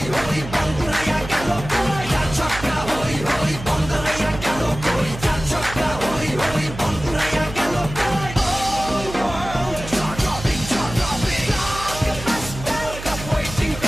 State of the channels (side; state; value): right; noise; hum, 11 dB below the sound